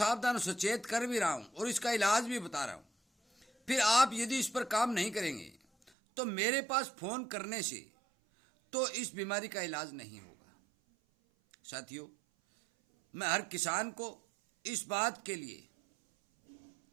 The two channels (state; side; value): drops out; left; at 5.9 s